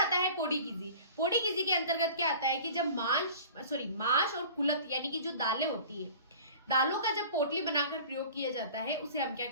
है पोड़ीकीजी के अंतर्गत क्या आता है कि जब मांस और कुलत यानी कि जो दालें होती है, दालों का जब पोटली बनाकर प्रयोग किया जाता है उसे हम क्या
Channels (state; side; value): inverted; both; correlation -0.42